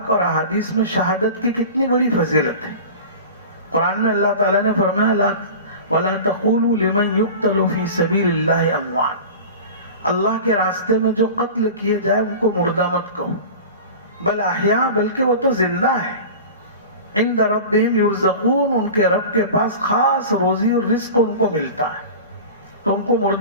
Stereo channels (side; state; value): both; inverted; correlation -0.35